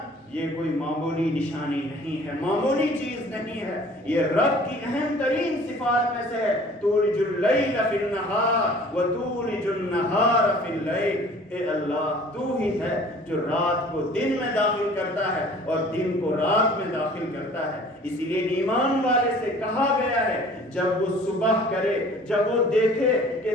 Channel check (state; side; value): normal; both; correlation 0.50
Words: یہ کوئی معمولی نشانی نہیں ہے، معمولی چیز نہیں ہے. یہ رب کی اہم ترین صفات میں سے ہے. تولج اللیل فی النہار وتولج النہار فی اللیل. اے اللہ تو ہی ہے جو رات کو دن میں داخل کرتا ہے اور دن کو رات میں داخل کرتا ہے. اسی لیے ایمان والے سے کہا گیا ہے جب وہ صبح کرے، جب وہ دیکھے کہ